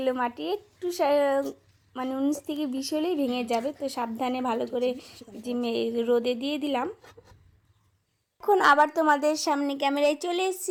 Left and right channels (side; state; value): both; identical; correlation 1.00